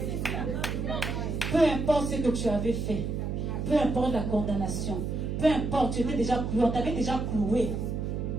Peu importe ce que tu avais fait, peu importe la condamnation, peu importe, tu étais déjà cloué, on t'avait déjà cloué.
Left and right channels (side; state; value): right; noise; hum, 2 dB below the sound